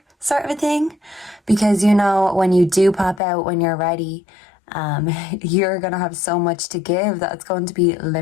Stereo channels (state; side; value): drops out; right; at 3.2 s